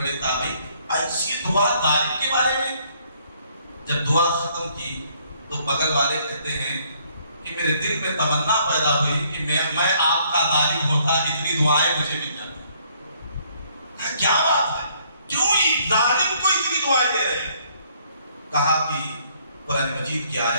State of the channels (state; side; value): inverted; both; correlation -0.65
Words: تابعی، ایسی دعا ظالم کے بارے میں۔ جب دعا ختم کی تو بغل والے کہتے ہیں کہ میرے دل میں تمنا پیدا ہوئی کہ میں آپ کا ظالم ہوتا، اتنی دعائیں مجھے مل جاتی۔ کیا بات ہے، کیوں یہ ظالم کو اتنی دعائیں دے رہے ہیں؟ کہا کہ قرآن مجید کی